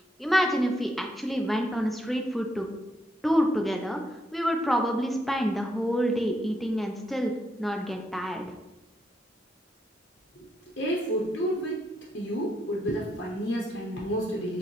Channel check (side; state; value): both; normal; correlation 0.78